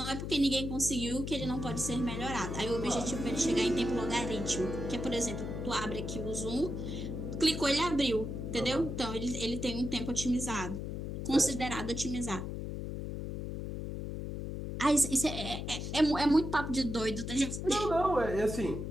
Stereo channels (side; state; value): left; noise; hum, 5 dB below the sound